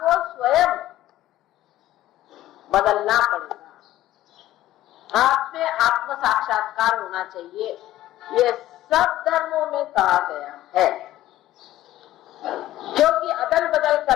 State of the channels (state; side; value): quieter; right; 14.5 dB